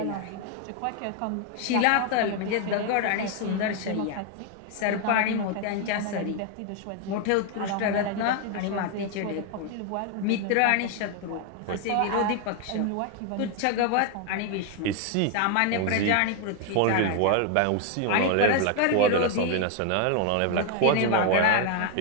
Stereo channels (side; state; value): both; different; correlation 0.01